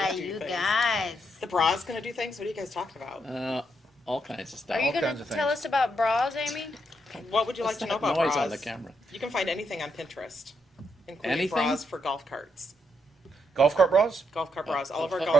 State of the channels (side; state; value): both; normal; correlation 0.79